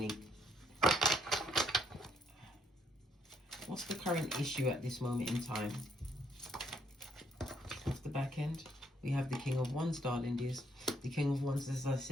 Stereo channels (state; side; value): normal; both; correlation 0.71